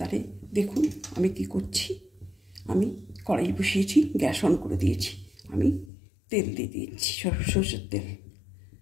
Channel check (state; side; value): drops out; right; at 5.9 s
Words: দেখুন আমি কি করছি। আমি কড়াই বসিয়েছি, গ্যাস অন করে দিয়েছি। আমি তেল দিয়ে দিয়েছি, সরষের তেল।